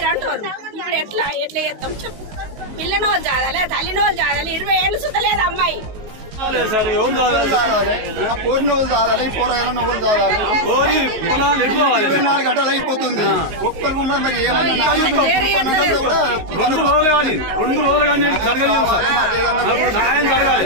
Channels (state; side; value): late; left; 19 ms